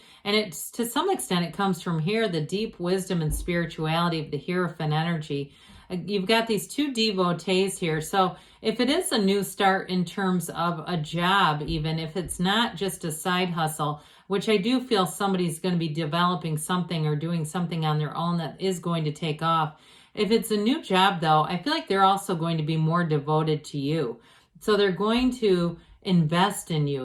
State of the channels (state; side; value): identical; both; correlation 1.00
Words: And it's, to some extent, it comes from here, the deep wisdom and spirituality of the Hierophant energy. You've got these two devotees here. So if it is a new start in terms of a job, even if it's not just a side hustle, which I do feel somebody's going to be developing something or doing something on their own that is going to take off. If it's a new job, though, I feel like they're also going to be more devoted to you. So they're going to invest in